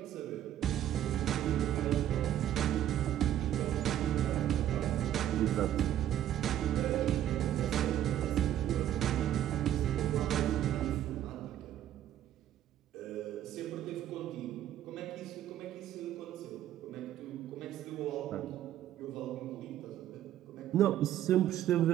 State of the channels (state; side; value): quieter; left; 11.6 dB